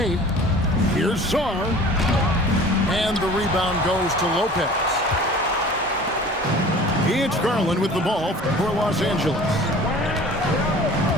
Here's Sarr. And the rebound goes to Lopez. It's Garland with the ball for Los Angeles.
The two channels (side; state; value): both; normal; correlation 0.44